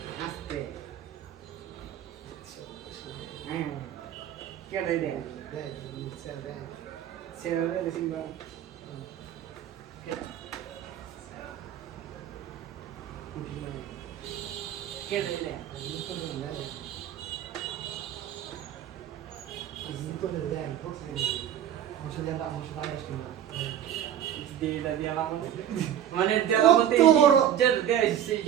আস্তে হ্যাঁ কেডাই দে সেরা দে সিংবা কে দিলে দিলা দিয়া মানে দেলা মতে যে দেয়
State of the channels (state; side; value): quieter; left; 10.4 dB